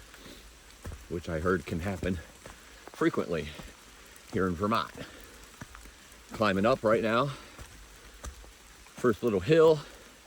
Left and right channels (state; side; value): identical; both; correlation 1.00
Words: which I heard can happen frequently here in Vermont. Climbing up right now. First little hill.